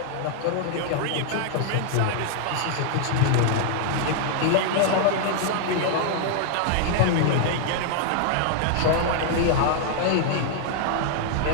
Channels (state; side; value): different; both; correlation -0.01